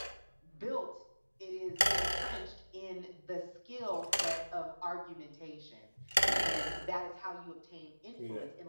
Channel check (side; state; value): both; inverted; correlation -1.00